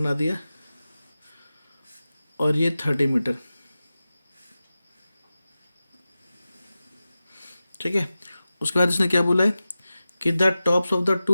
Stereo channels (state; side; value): inverted; both; correlation -0.94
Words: दिया और ये 30 मीटर। ठीक है, उसके बाद इसने क्या बोला है कि the tops of the